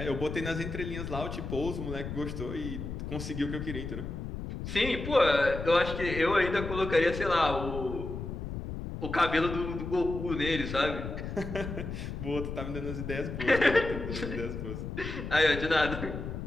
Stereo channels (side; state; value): left; noise; rumble, 6 dB below the sound